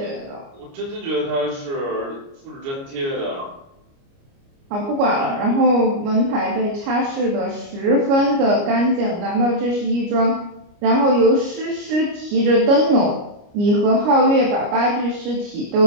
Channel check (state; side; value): late; left; 29 ms